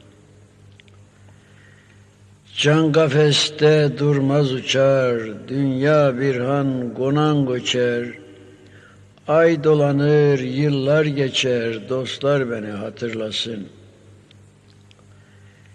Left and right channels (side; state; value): both; identical; correlation 1.00